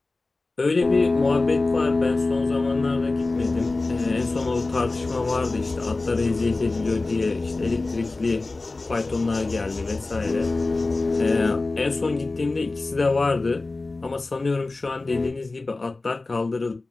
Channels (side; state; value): right; quieter; 3.3 dB